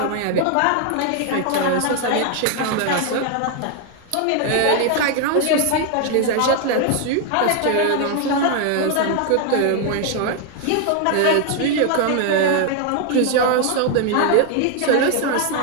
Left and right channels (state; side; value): different; both; correlation 0.00